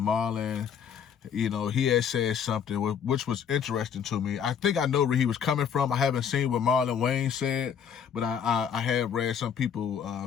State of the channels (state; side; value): quieter; right; 7.7 dB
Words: Marlon, you know, he had said something which was interesting to me. I think I know where he was coming from. I haven't seen what Marlon Wayne said, but I have read some people